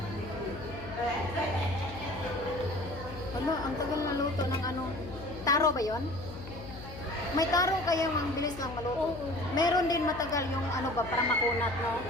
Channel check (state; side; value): noise; left; hum, 13 dB below the sound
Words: Ano, ang tagal na luto ng ano. Taro ba yon? May taro kaya ang bilis lang maluto. Oo. Meron din matagal yung ano ba, para makunat, no?